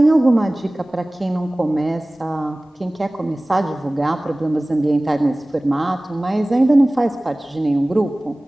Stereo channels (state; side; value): normal; both; correlation 0.98